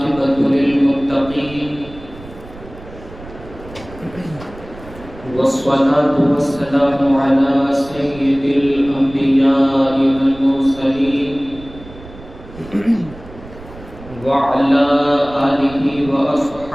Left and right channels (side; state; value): right; noise; rumble, 17 dB below the sound